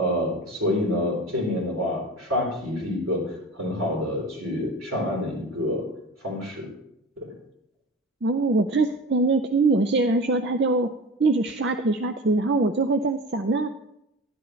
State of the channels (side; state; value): both; normal; correlation 0.33